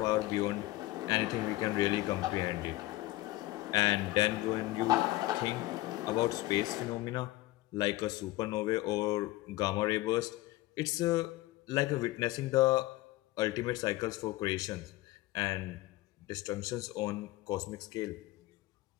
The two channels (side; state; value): right; quieter; 18.3 dB